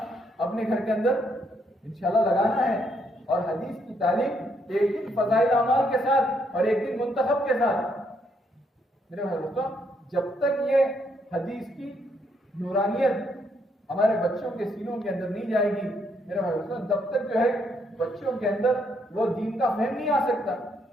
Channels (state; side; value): normal; both; correlation 0.73